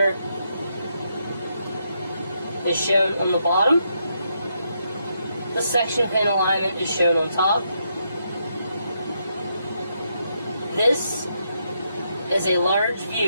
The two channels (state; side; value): inverted; both; correlation -0.79